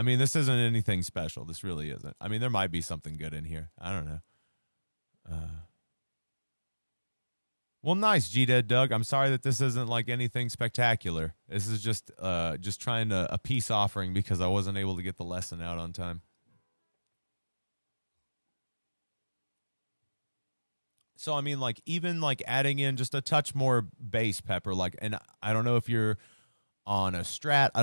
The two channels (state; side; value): inverted; both; correlation -1.00